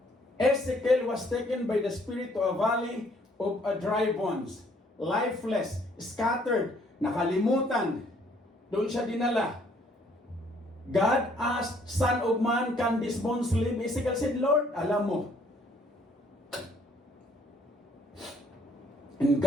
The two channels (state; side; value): normal; both; correlation 0.64